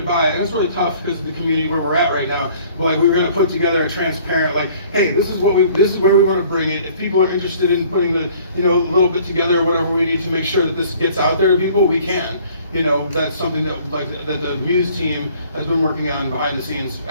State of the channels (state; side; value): inverted; both; correlation -0.55